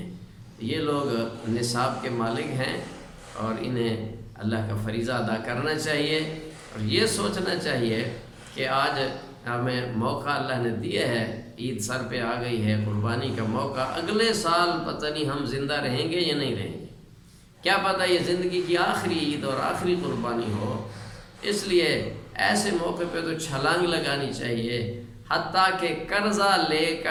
یہ لوگ نصاب کے مالک ہیں اور انہیں اللہ کا فریضہ ادا کرنا چاہیے، اور یہ سوچنا چاہیے کہ آج ہمیں موقع اللہ نے دیا ہے، عید سر پہ آ گئی ہے، قربانی کا موقع، اگلے سال پتہ نہیں ہم زندہ رہیں گے یا نہیں رہیں گے، کیا پتہ یہ زندگی کی آخری عید اور آخری قربانی ہو۔ اس لیے ایسے موقع پہ تو چھلانگ لگانی چاہیے، حتیٰ کہ قرضہ لے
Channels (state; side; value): identical; both; correlation 1.00